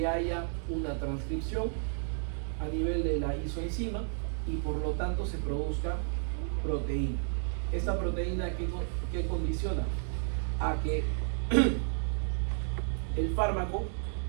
haya una transcripción a nivel de la isoenzima y por lo tanto se produzca proteína. Esta proteína ¿qué condiciona? A que el fármaco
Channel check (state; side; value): silent; left; 56 dB below the other